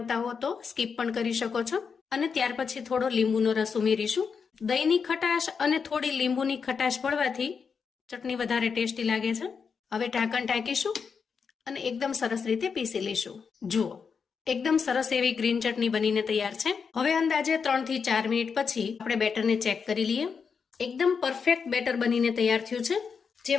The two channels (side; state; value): right; quieter; 5.9 dB